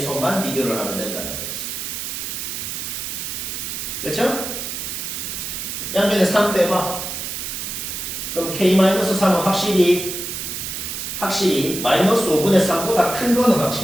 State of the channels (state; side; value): noise; right; hiss, 5 dB below the sound